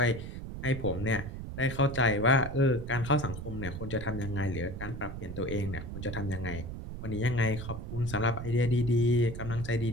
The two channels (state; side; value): noise; right; rumble, 8 dB below the sound